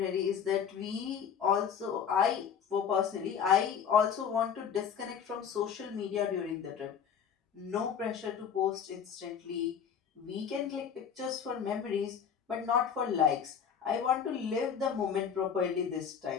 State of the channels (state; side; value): quieter; right; 7.5 dB